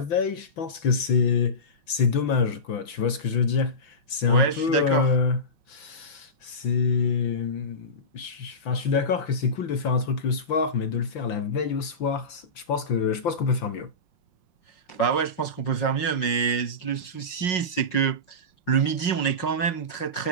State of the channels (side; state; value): right; late; 5.9 ms